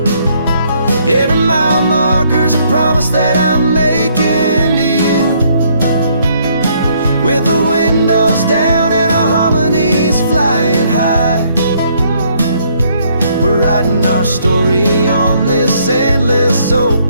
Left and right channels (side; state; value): both; inverted; correlation -0.67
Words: Every mile marker's a promise that I'm making to you. With the windows down and our harmonies flying high, we're writing our story on this endless